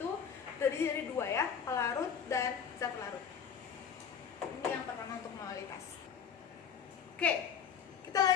terdiri dari dua ya, pelarut dan zat pelarut. Ini yang pertama untuk molalitas. Oke, kita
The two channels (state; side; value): quieter; right; 7.4 dB